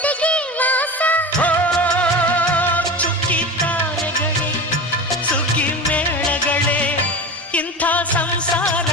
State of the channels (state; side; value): normal; both; correlation 0.28